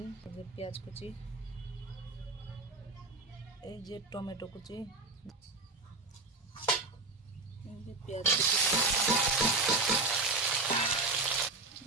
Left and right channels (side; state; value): left; quieter; 3.6 dB